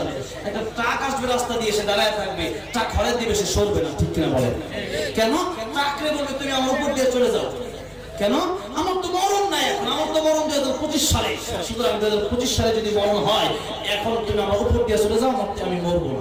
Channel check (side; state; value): both; identical; correlation 1.00